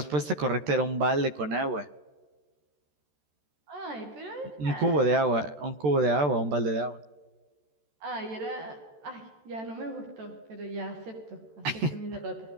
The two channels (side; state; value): left; late; 14 ms